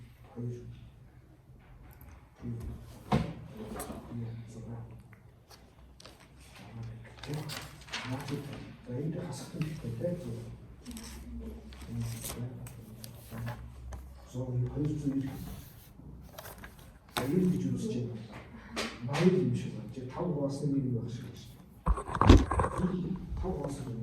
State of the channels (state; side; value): identical; both; correlation 1.00